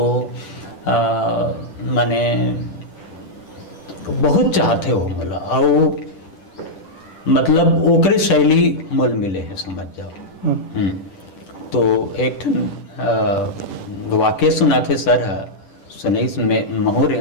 मैंने बहुत चाहते हो मला और मतलब ओकरे शैली मोल मिले है समझ जाओ। तो एक ठन वाक्य सुनाते सर सुनैस में महू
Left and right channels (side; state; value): right; late; 10 ms